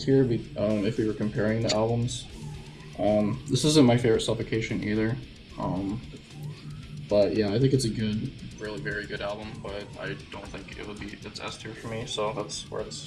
if we were comparing the albums. This isn't my favorite Suffocation either. Um, but yeah, I think it's a good, really very good album. But I don't think it would be it's S tier for me. So that's where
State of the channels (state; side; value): identical; both; correlation 1.00